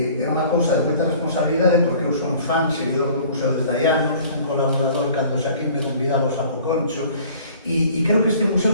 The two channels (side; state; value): both; inverted; correlation -0.50